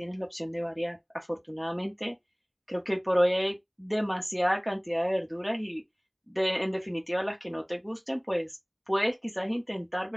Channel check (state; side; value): identical; both; correlation 1.00